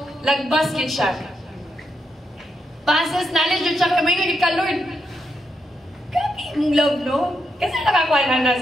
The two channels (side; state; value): both; normal; correlation 0.82